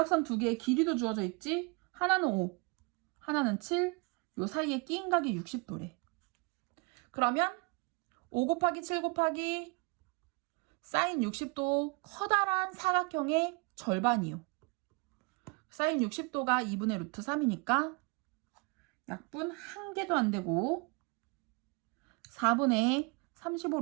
2개의 길이도 주어져 있지. 하나는 5, 하나는 7. 요 사이에 끼인 각이 60도래. 그러면 5 곱하기 7 곱하기 사인 60도 커다란 사각형의 절반이요. 사인 60도가 2분의 루트 3이니까 약분 1개도 안 되고 4분의 35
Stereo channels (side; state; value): left; quieter; 29.9 dB